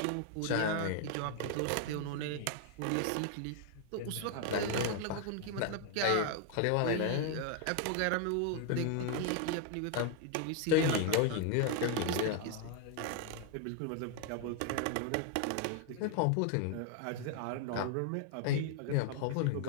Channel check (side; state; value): both; different; correlation 0.00